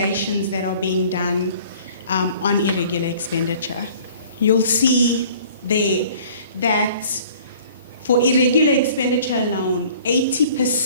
that are being done on irregular expenditure. You'll see there that for irregular expenditure alone,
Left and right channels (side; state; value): both; inverted; correlation -0.51